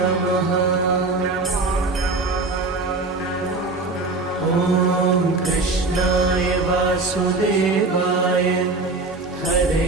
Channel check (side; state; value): left; quieter; 3.5 dB